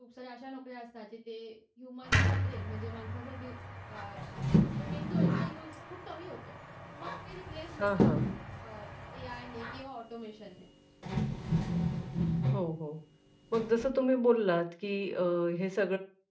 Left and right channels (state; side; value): identical; both; correlation 1.00